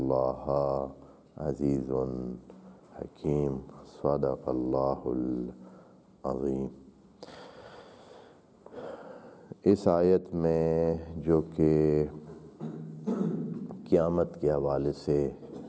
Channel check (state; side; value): identical; both; correlation 1.00